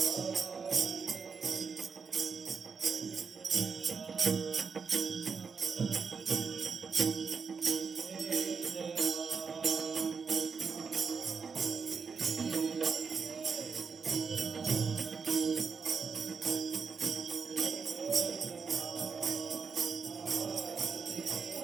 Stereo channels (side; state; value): left; quieter; 5.5 dB